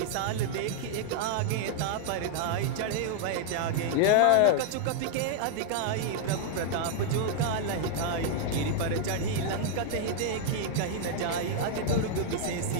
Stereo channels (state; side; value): different; both; correlation 0.00